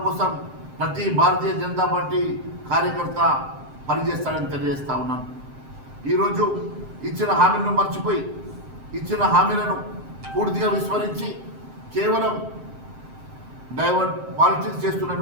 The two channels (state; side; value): late; left; 7.7 ms